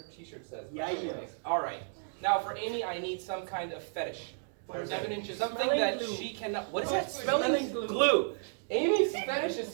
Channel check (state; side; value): silent; left; digital silence